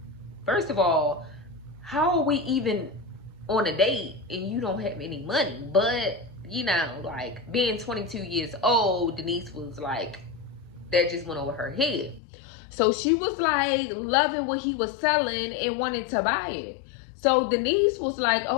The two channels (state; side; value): drops out; right; at 12.2 s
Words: first of all, how are we even on a date and you don't have any money? But, you know, like, being 22 years old, Denise was like, that just went over her head. So she was like loving what he was selling and wanted to buy it. So Denise was like,